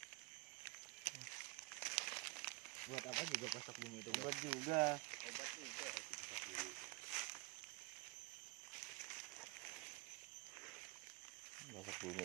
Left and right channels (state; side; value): quieter; left; 25.4 dB